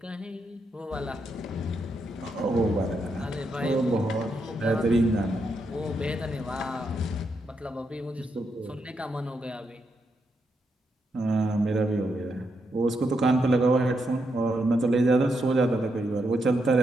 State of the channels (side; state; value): both; normal; correlation 0.81